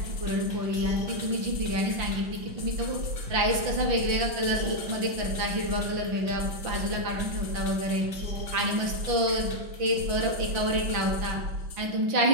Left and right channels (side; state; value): left; late; 5.9 ms